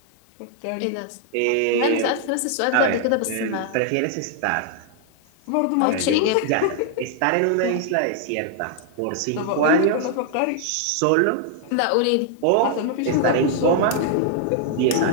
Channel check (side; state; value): both; different; correlation -0.01